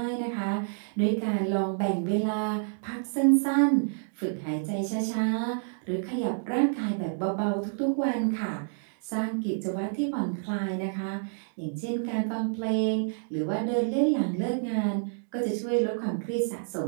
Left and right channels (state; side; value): silent; left; digital silence